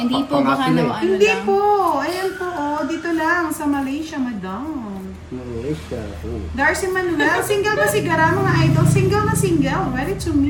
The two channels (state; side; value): identical; both; correlation 1.00